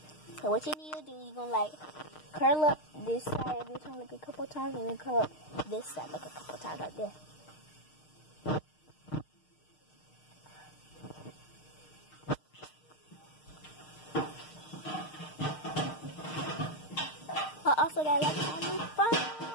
So what you need to do, you're gonna like curl up this side of your tongue like a couple times, and then curl up this side like a couple times like this. I also got like a new phone.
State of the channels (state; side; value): late; right; 6.5 ms